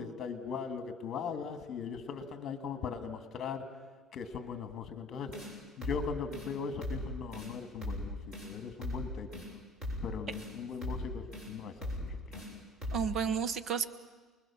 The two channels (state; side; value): normal; both; correlation 0.47